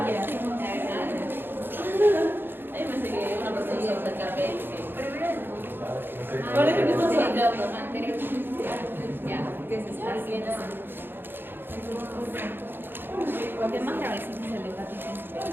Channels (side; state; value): left; late; 0.10 ms